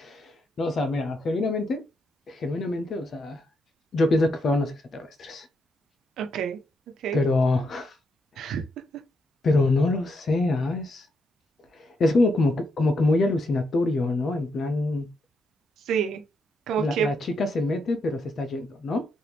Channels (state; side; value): normal; both; correlation 0.80